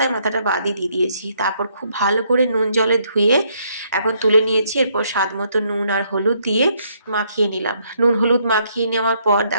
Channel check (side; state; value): both; inverted; correlation -0.71